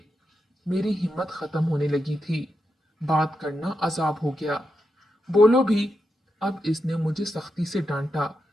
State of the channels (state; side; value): normal; both; correlation 0.86